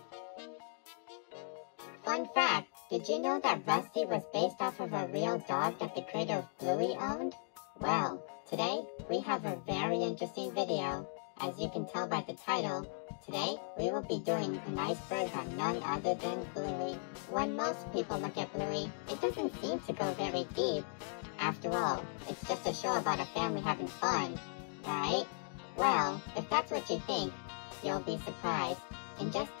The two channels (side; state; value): right; silent; digital silence